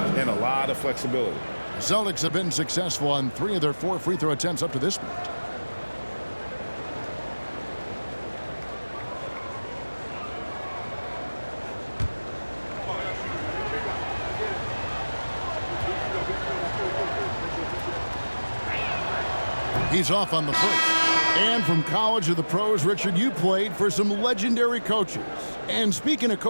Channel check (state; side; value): inverted; both; correlation -1.00